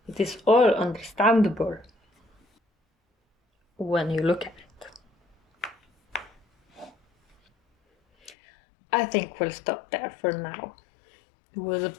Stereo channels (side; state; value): right; drops out; at 8.3 s